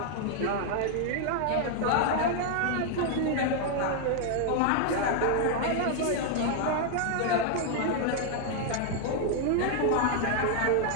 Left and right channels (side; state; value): both; different; correlation 0.00